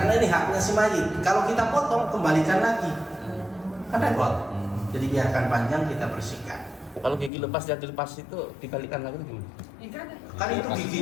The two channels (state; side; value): drops out; right; at 7.3 s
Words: ini haknya si mayit. Kalau kita potong, kembalikan lagi, kan repot. Jadi biarkan panjang, kita bersihkan. Kalau gigi lepas dan dilepas itu dibalikan lagi gimana? Kan itu